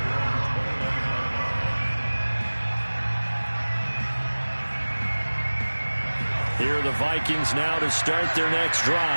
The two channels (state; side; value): inverted; both; correlation -1.00